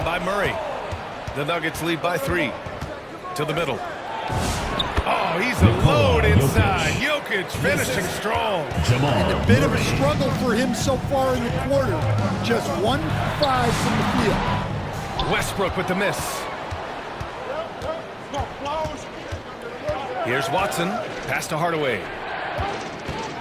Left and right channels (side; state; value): both; identical; correlation 1.00